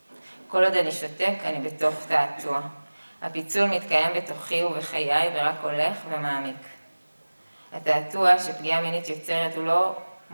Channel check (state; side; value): inverted; both; correlation -1.00